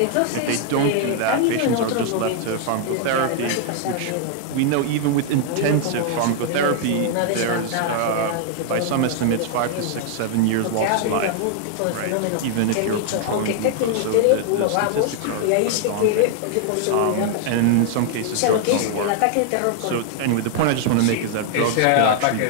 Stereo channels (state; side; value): different; both; correlation 0.00